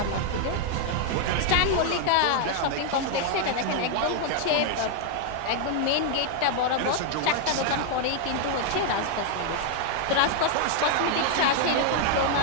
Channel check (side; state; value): both; different; correlation 0.00